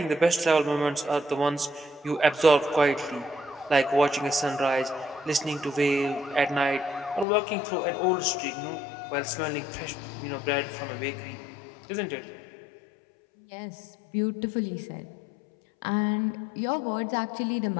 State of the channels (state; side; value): drops out; right; at 7.2 s